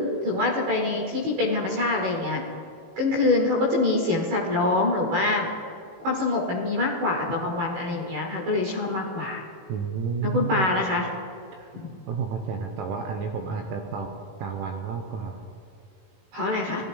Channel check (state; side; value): late; left; 18 ms